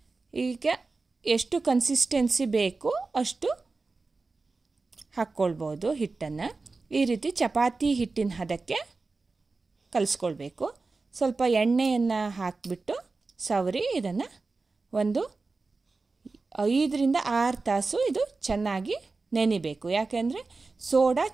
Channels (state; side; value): quieter; left; 3.8 dB